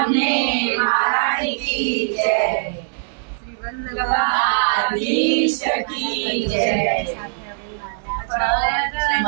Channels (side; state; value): left; silent; digital silence